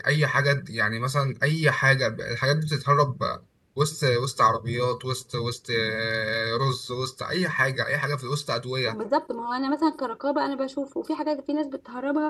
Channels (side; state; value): both; identical; correlation 1.00